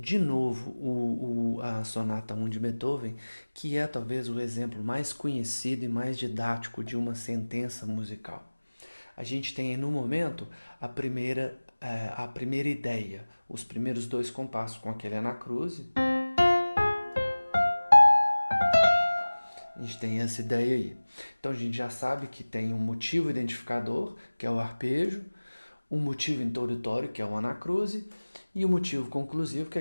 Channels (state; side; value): inverted; both; correlation -1.00